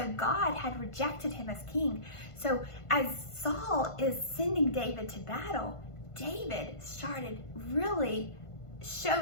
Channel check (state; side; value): late; right; 1.5 ms